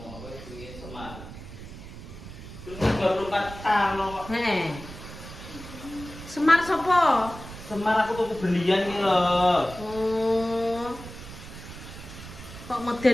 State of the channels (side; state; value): right; noise; rumble, 13 dB below the sound